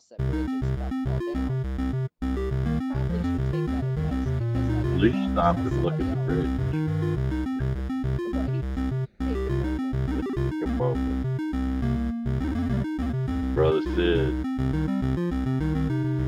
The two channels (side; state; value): both; identical; correlation 1.00